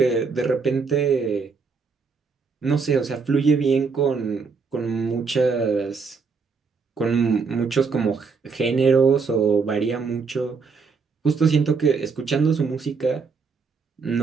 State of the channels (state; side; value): quieter; left; 5.0 dB